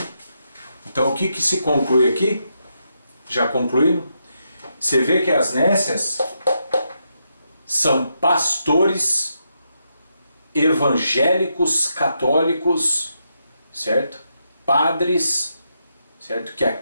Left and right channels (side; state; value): both; inverted; correlation -0.82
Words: Então o que se conclui aqui? Já concluindo? Você vê que as nécias são pastores evangélicos, católicos, certo? Padres, certo? Que